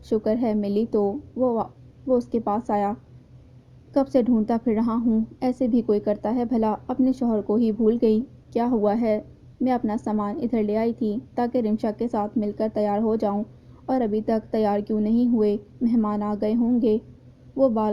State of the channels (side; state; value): both; identical; correlation 1.00